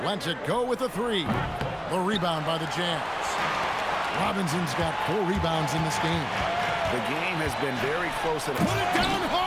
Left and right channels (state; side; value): identical; both; correlation 1.00